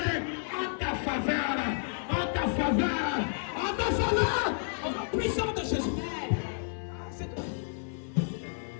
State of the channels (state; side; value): silent; right; 55 dB below the other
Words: en ta faveur. Au nom puissant de Jésus. C'est toi.